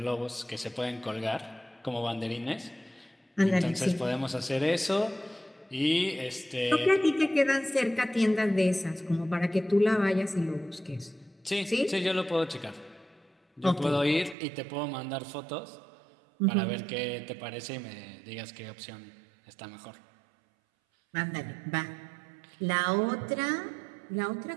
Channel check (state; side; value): drops out; left; at 14.4 s